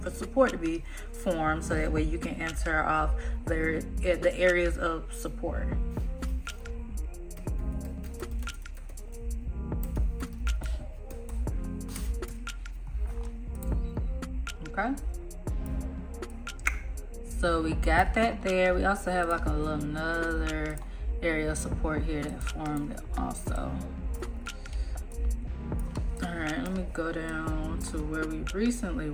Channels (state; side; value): identical; both; correlation 1.00